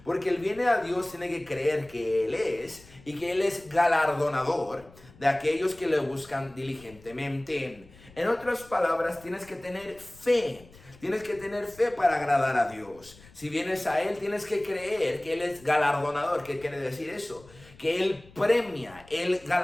porque el viene a Dios tiene que creer que Él es y que Él es galardonador de aquellos que le buscan diligentemente. En otras palabras, tienes que tener fe. Tienes que tener fe para agradar a Dios. Si vienes a Él, tienes que creer que Él es galardonador. ¿Qué quiere decir eso? Que Él premia, Él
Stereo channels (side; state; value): left; noise; rumble, 24 dB below the sound